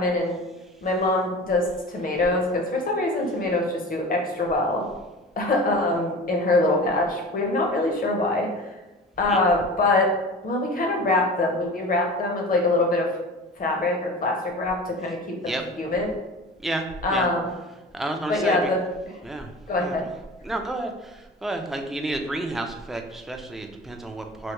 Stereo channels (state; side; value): normal; both; correlation 0.35